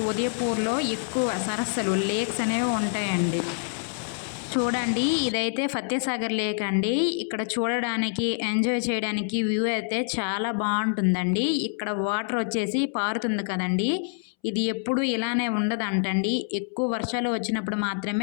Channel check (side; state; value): right; silent; 61 dB below the other